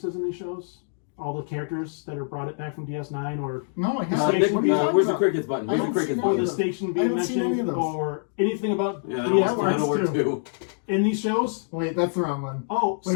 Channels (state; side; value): silent; right; digital silence